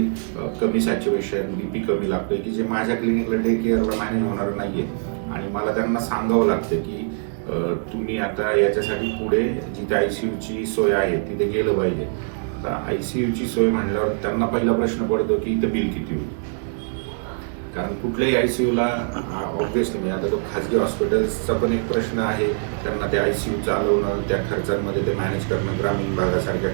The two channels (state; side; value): silent; left; digital silence